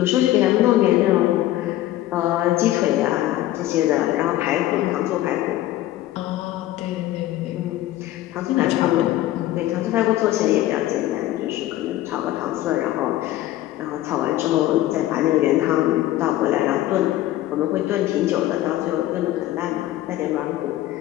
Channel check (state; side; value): quieter; right; 14.7 dB